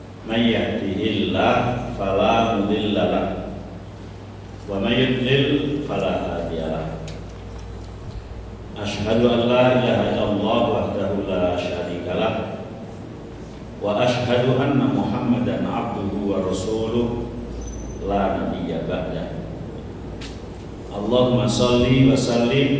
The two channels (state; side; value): identical; both; correlation 1.00